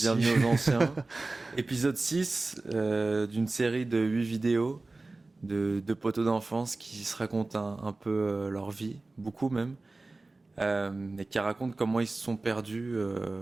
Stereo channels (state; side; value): quieter; left; 3.2 dB